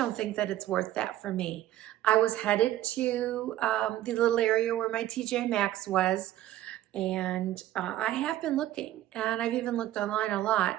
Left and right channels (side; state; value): left; quieter; 13.8 dB